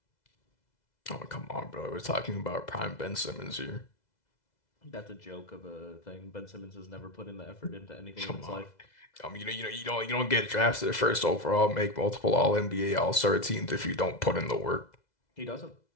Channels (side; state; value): right; late; 2.0 ms